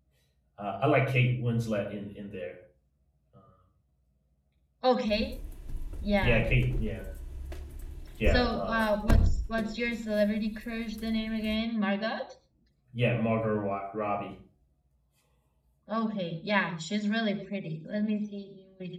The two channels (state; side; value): identical; both; correlation 1.00